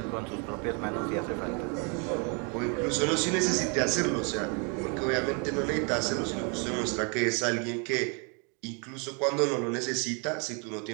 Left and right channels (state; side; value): quieter; left; 35.6 dB